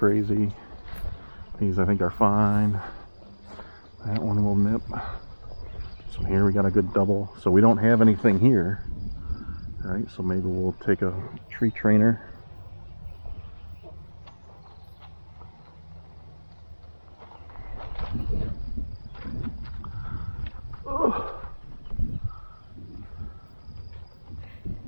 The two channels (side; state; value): both; inverted; correlation -1.00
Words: These I think are fine. That one will nip. So here we got a good double. So we don't have anything here. All right, so maybe we'll take a tree trainer. Oh.